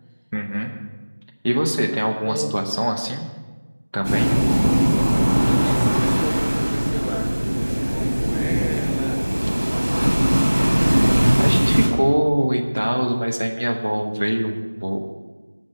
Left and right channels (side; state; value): both; inverted; correlation -1.00